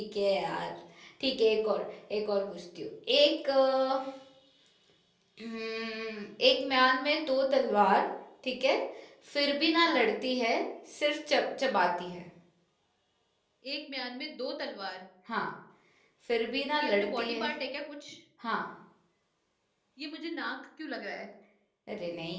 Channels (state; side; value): identical; both; correlation 1.00